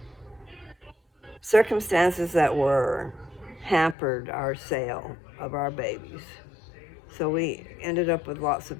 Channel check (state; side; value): drops out; right; at 4.0 s